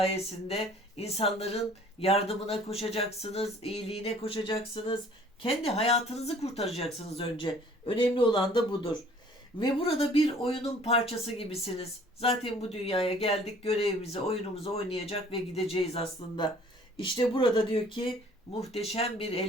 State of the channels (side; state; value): both; normal; correlation 0.54